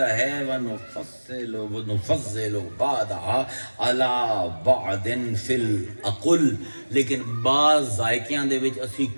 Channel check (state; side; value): inverted; both; correlation -1.00